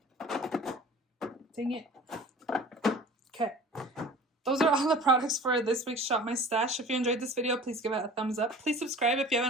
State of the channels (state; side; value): normal; both; correlation 0.44